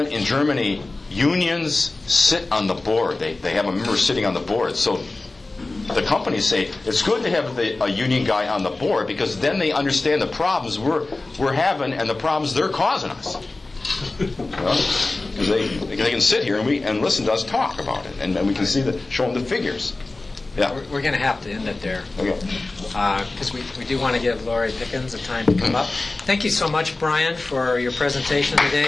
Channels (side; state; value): right; quieter; 3.2 dB